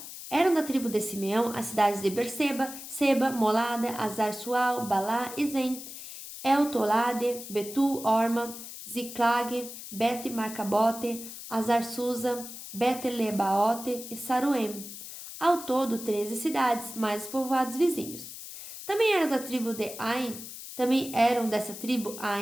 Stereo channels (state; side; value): noise; left; hiss, 11 dB below the sound